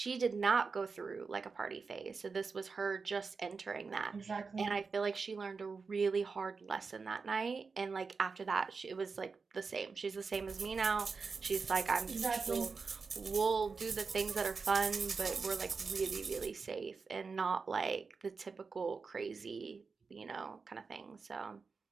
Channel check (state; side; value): quieter; left; 4.8 dB